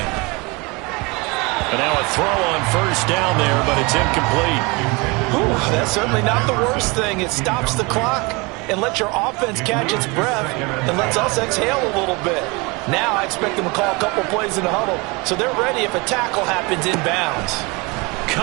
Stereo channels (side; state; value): left; quieter; 26.8 dB